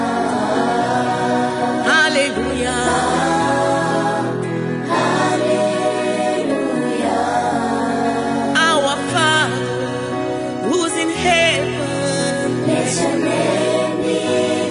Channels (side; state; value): both; identical; correlation 1.00